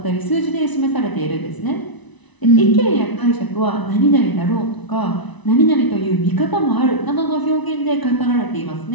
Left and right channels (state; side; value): late; right; 1.0 ms